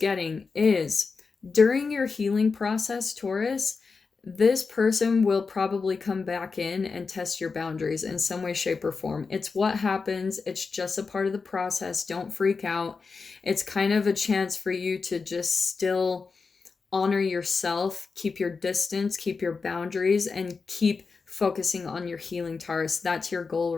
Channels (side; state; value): right; quieter; 4.7 dB